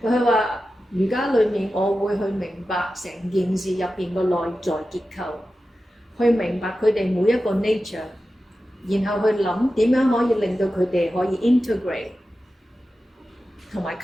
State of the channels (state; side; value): normal; both; correlation 0.93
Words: 佢話瑜伽裡面，我會去明白成件事入邊個內在結構，去明白佢哋每一個 nature， 然後去諗點樣可以令到佢哋可以 integrate 同埋